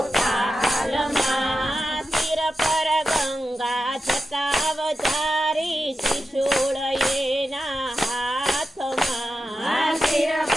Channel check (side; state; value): both; normal; correlation 0.91